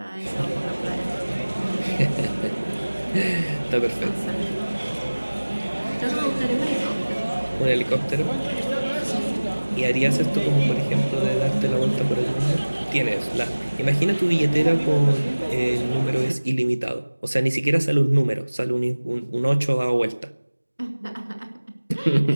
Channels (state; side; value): inverted; both; correlation -1.00